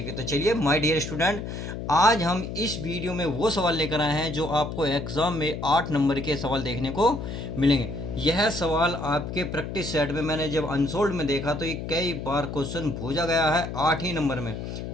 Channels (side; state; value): left; noise; hum, 6 dB below the sound